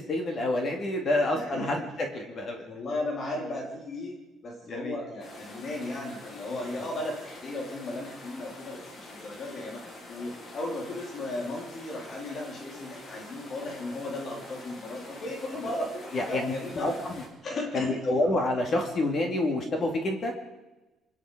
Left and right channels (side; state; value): both; normal; correlation 0.72